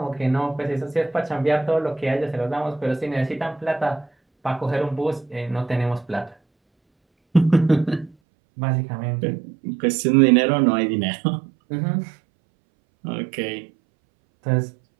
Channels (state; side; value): drops out; left; at 8.2 s